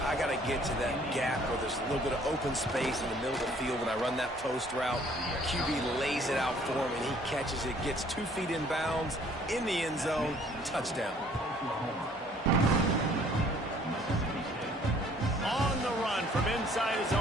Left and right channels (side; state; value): both; normal; correlation 0.58